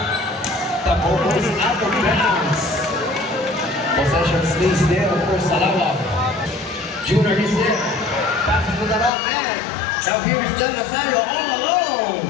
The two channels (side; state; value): right; drops out; at 9.1 s